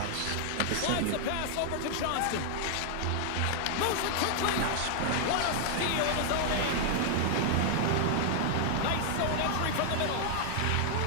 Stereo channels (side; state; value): both; different; correlation 0.00